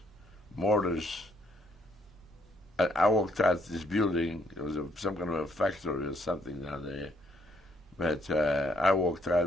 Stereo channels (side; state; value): both; normal; correlation 0.70